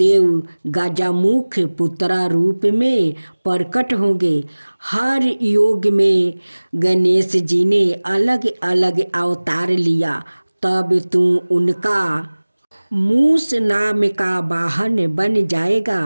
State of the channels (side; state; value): both; inverted; correlation -1.00